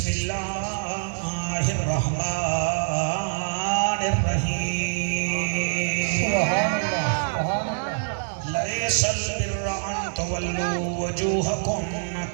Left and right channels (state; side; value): silent; left; 59 dB below the other